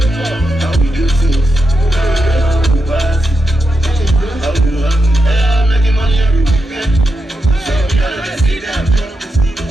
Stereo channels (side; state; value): both; normal; correlation 0.86